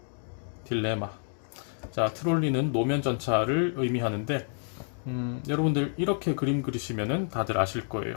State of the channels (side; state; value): right; silent; digital silence